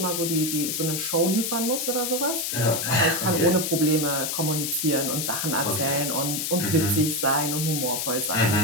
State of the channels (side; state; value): left; noise; hiss, 2 dB below the sound